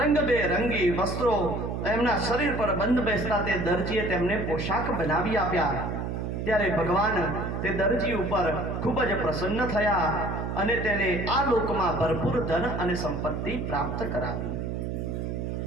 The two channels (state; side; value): noise; right; hum, 3 dB below the sound